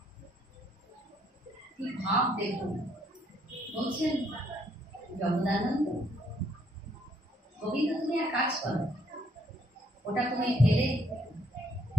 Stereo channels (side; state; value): both; normal; correlation 0.69